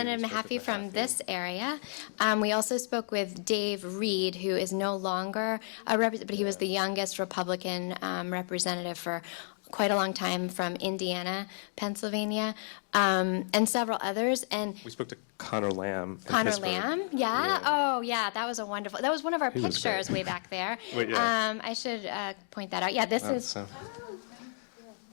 Mahaffey from this area. We also spoke with Dave Reed, who is no longer a representative, but he was the youngest Republican representative for quite a long time from Indiana, Pennsylvania, and several others. And We spoke to Connor Lamb. Connor Lamb, yeah. Oh, yeah. That was that was one of our pictures way back there. Wait, yeah. I should point that out. Yeah, this is. So.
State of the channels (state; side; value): silent; right; digital silence